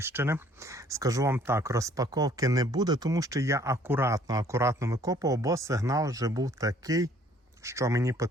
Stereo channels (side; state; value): both; normal; correlation 0.59